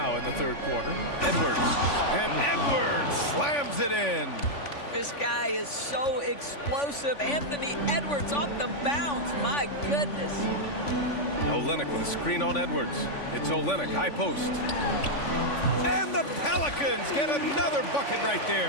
in the third quarter. Edwards. And Edwards slams it in. This guy is so explosive. Anthony Edwards off the bounce. My goodness. Olynyk with a screen on Edwards. It's Olynyk, high post. And the Pelicans get another bucket right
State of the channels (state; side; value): late; right; 3.5 ms